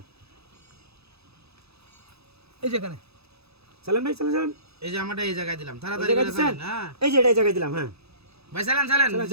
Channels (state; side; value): late; left; 0.79 ms